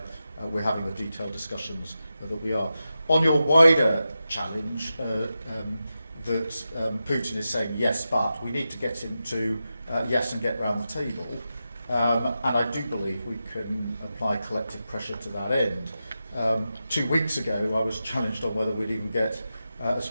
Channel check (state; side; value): inverted; both; correlation -0.90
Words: we're having the detailed discussions that we are. On your wider challenge, that Putin is saying yes, but we need to get him to yes and get round the table. And I do believe we can apply collective pressure to that end. 2 weeks ago, I was challenged on whether we'd even get as